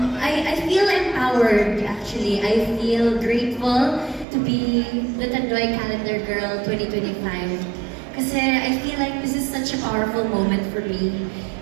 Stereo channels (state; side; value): drops out; left; at 4.2 s